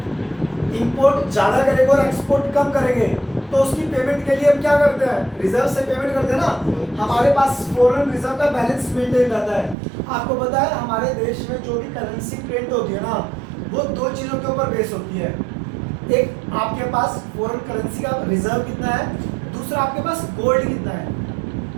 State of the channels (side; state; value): left; drops out; at 9.8 s